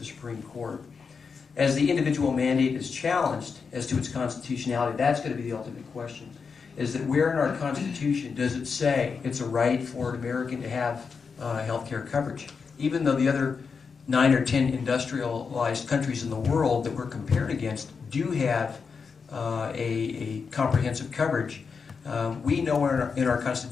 Supreme Court. As the individual mandate is challenged as to its constitutionality, that's going to be the ultimate question. Is that where in our Constitution does it say it's a right for an American to have health care coverage? Even though the other 9 or 10 industrialized countries in the world that we're compared against do have a comprehensive coverage, we know in our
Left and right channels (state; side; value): quieter; right; 5.5 dB